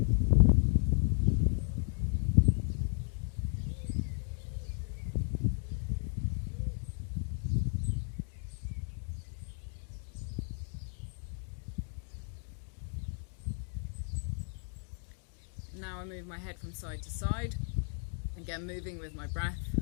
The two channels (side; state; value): right; silent; 55 dB below the other